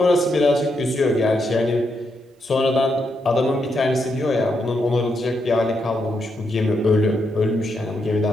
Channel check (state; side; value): normal; both; correlation 0.81